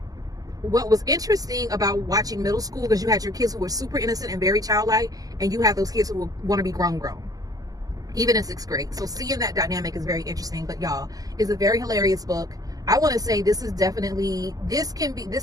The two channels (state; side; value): late; left; 0.17 ms